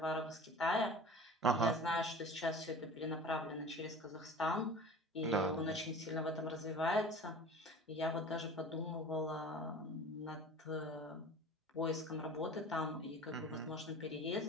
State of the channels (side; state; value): both; normal; correlation 0.39